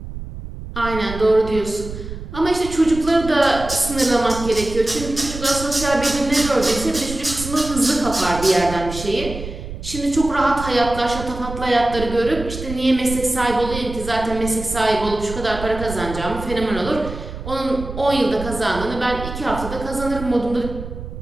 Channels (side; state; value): right; noise; rumble, 10 dB below the sound